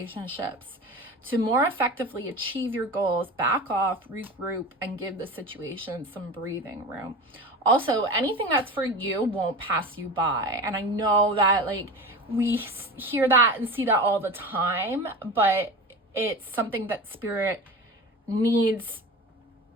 To more effectively achieve your goals, back off, regroup, and give the situation some breathing room. Also, anything that's for you won't pass you by. And I know that we hear that and see that all the time, but it's something that spirit needs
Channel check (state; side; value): normal; both; correlation 0.31